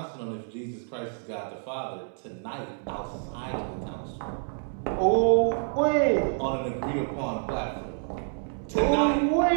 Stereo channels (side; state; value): left; silent; digital silence